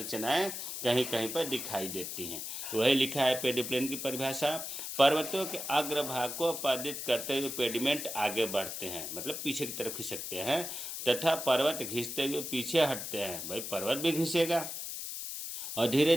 कहीं कहीं पर दिखाई देती हैं। वही लिखा है पेडिप्लेन की परिभाषा। पर्वतों के अग्रभाग को आपादित करते हुए पेडिमेंट आगे बढ़ते हैं, मतलब पीछे की तरफ खिसकते हैं, तथा पर्वत घिसते हुए पीछे हटते हैं। भाई पर्वत भी घिसेगा और धीरे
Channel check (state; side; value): noise; left; hiss, 6 dB below the sound